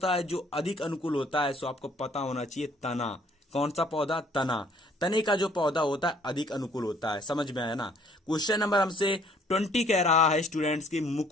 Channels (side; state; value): both; normal; correlation 0.60